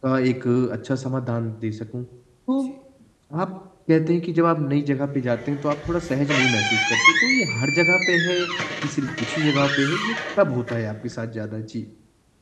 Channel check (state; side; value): identical; both; correlation 1.00